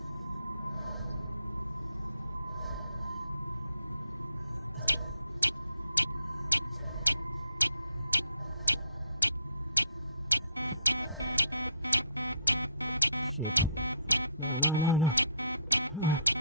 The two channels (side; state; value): both; inverted; correlation -0.68